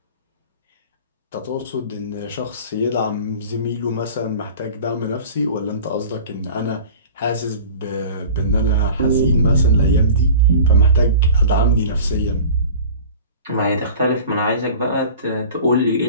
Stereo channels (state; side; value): inverted; both; correlation -0.40